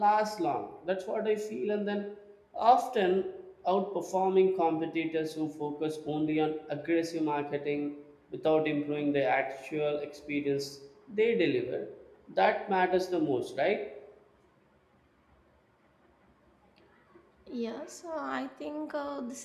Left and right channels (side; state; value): both; identical; correlation 1.00